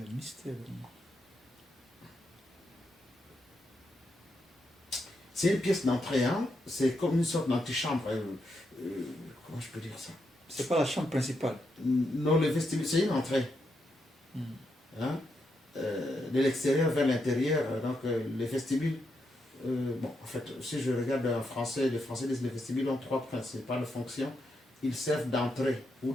mystère. C'est une pièce d'entrée, c'est comme une sorte d'antichambre. Comment je peux dire ça? C'est pas la chambre principale. Non, le vestibule, c'est une entrée. De l'extérieur vers l'intérieur. Donc, les vestibules, en fait, si je regarde en français, les Français disent que les vestibules ont trois principales fonctions. Ils servent d'entrée ou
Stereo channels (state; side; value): normal; both; correlation 0.82